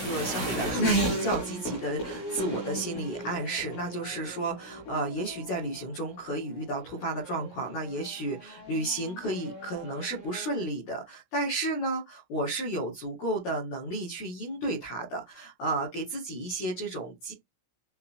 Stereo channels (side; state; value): right; late; 17 ms